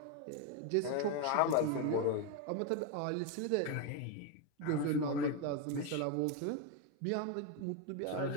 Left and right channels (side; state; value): both; different; correlation 0.02